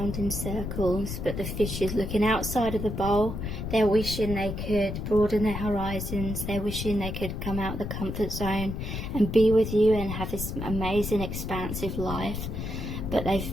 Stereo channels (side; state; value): left; noise; rumble, 5 dB below the sound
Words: in circles, but the fish is looking outside of the bowl. They're wishing they could broaden their horizons. They're wishing they could come out of the comfort zone and be with you and have this amazing expansive life, but